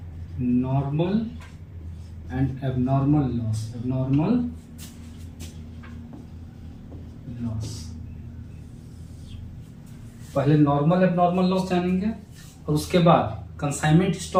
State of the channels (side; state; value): both; identical; correlation 1.00